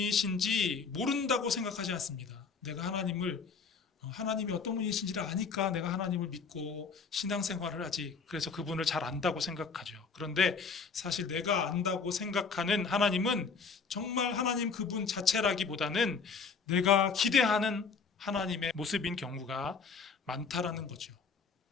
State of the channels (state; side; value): quieter; right; 5.2 dB